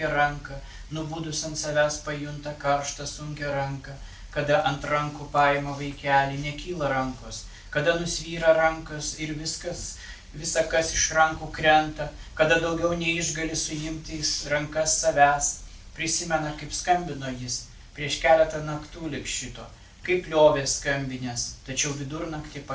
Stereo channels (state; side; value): identical; both; correlation 1.00